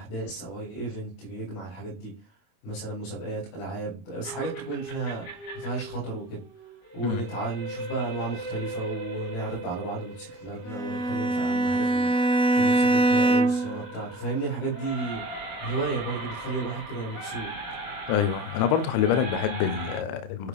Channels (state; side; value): late; right; 29 ms